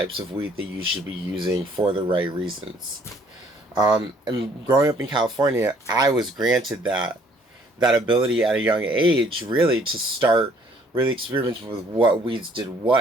of weed that you should be using for the right reasons. And growing up in California, I was granted that ability at a young age, really, to start really experimenting with what weeds did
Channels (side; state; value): both; normal; correlation 0.61